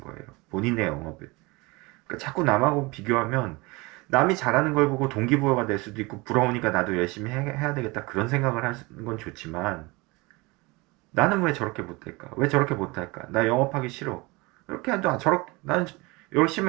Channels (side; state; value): left; quieter; 24.4 dB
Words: 거예요. 본인의 영업을. 그러니까 자꾸 남하고 비교하면 남이 잘하는 걸 보고 동기부여가 될 수도 있고 부러우니까 나도 열심히 해야 되겠다 그런 생각을 하는 건 좋지만, 나는 왜 저렇게 못할까? 왜 저렇게 못할까? 나 영업하기 싫어. 이렇게 해도 나는